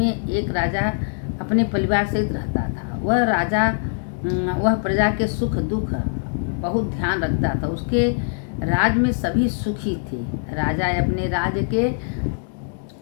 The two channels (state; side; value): silent; right; digital silence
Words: एक राजा अपने परिवार सहित रहता था। वह राजा वह प्रजा के सुख दुख बहुत ध्यान रखता था। उसके राज में सभी सुखी थे। राजा अपने राज्य के